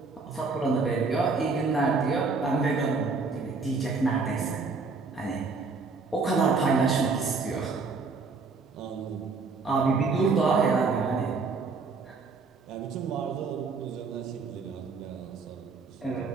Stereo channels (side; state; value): left; quieter; 4.4 dB